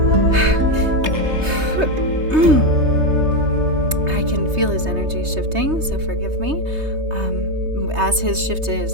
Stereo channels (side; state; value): left; late; 3.2 ms